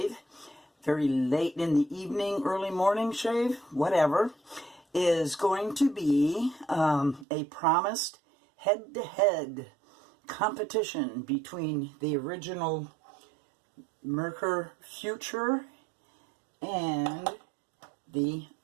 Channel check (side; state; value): left; drops out; at 7.2 s